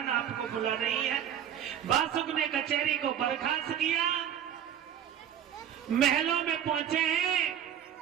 आपको बुला रही है। बासुक ने कचहरी को बर्खास्त किया, महलों में पहुंचे हैं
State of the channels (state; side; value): quieter; left; 9.7 dB